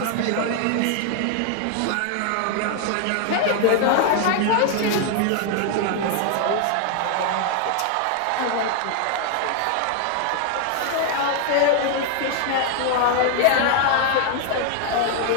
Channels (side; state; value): both; different; correlation 0.00